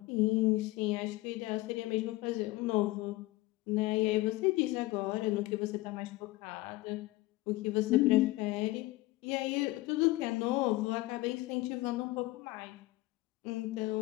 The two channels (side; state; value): right; quieter; 19.7 dB